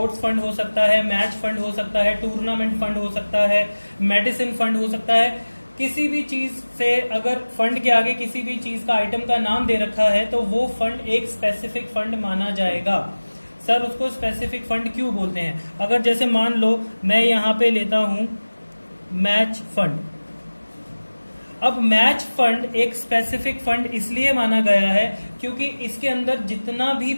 फंड हो सकता है, मैच फंड हो सकता है, टूर्नामेंट फंड हो सकता है, मेडिसिन फंड हो सकता है। किसी भी चीज से अगर फंड के आगे किसी भी चीज का आइटम का नाम दे रखा है तो वो फंड एक स्पेसिफिक फंड माना जाएगा। सर उसको स्पेसिफिक फंड क्यों बोलते हैं? अगर जैसे मान लो मैं यहां पे लेता हूं मैच फंड। अब मैच फंड एक स्पेसिफिक फंड इसलिए माना गया है क्योंकि इसके अंदर जितना भी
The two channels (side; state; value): both; inverted; correlation -1.00